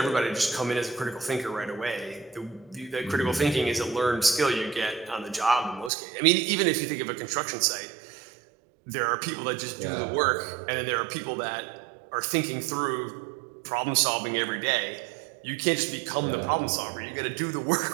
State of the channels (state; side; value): drops out; left; at 5.9 s